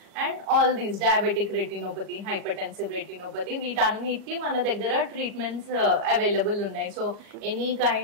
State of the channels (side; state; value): left; late; 39 ms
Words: And all these diabetic retinopathy, hypertensive retinopathy, వీటన్నిటికీ మన దగ్గర ట్రీట్మెంట్స్ అవైలబుల్ ఉన్నాయి. So any